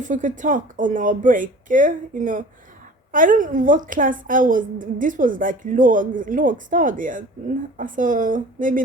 we could talk on our break. You know, I don't know what class I was. This was like lågstadiet. So maybe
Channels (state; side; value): normal; both; correlation 0.43